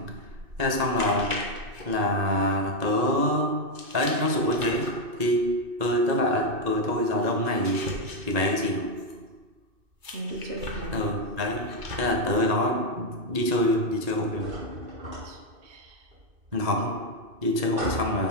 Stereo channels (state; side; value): late; left; 2.6 ms